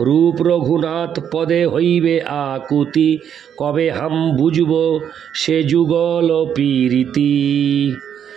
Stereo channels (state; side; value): quieter; left; 8.7 dB